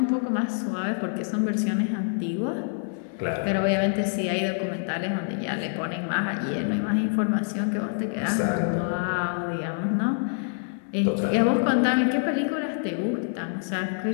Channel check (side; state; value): right; silent; digital silence